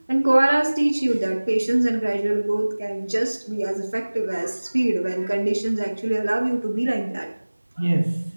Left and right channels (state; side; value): inverted; both; correlation -1.00